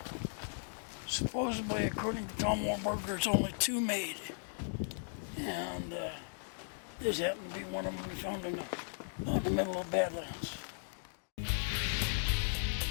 Supposedly, according to Tom Warburg, there's only two made. And this happened to be one of them we found in the middle of Badlands.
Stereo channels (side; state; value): right; silent; digital silence